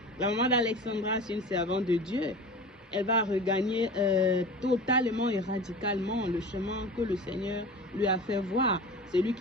La maman d'Alexandra, c'est une servante de Dieu. Elle va regagner totalement et radicalement le chemin que le Seigneur lui a fait voir. C'est lui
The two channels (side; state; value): both; normal; correlation 0.35